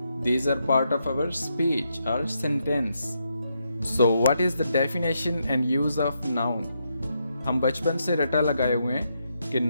These are part of our speech or sentence. So what is the definition and use of noun? हम बचपन से रटा लगाए हुए हैं कि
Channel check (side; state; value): both; inverted; correlation -0.81